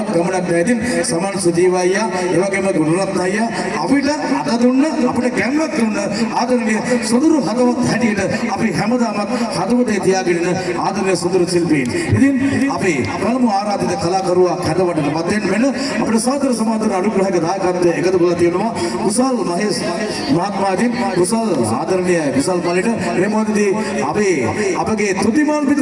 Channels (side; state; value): both; identical; correlation 1.00